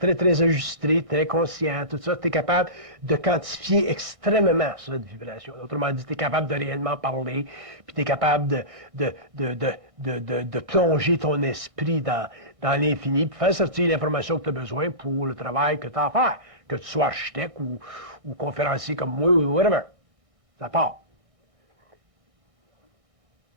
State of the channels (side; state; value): left; late; 1.6 ms